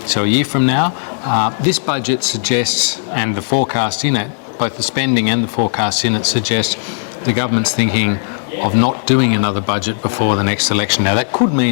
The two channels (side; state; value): right; silent; digital silence